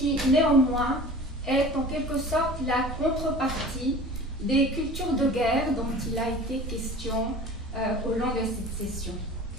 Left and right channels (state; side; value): normal; both; correlation 0.40